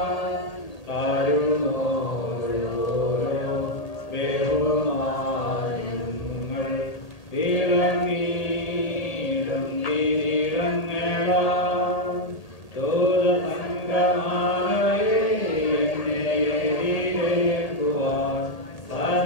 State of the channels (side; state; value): right; late; 1.8 ms